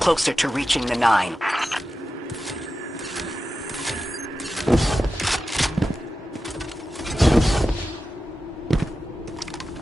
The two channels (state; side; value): normal; both; correlation 0.92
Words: to reaching the 9.